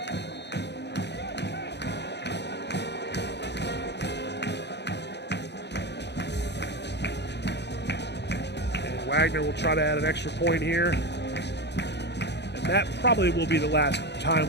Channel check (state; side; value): late; right; 0.50 ms